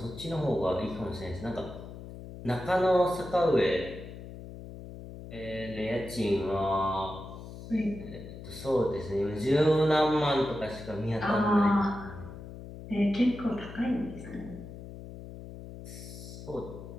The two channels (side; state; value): left; noise; hum, 12 dB below the sound